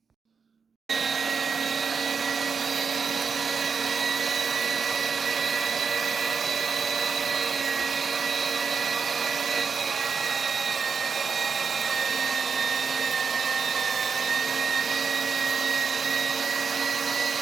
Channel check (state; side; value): quieter; left; 5.7 dB